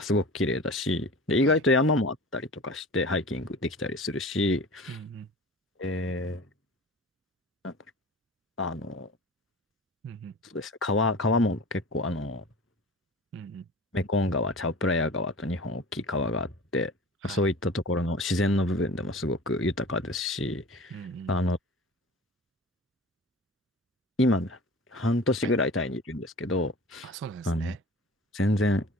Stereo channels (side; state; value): both; normal; correlation 0.39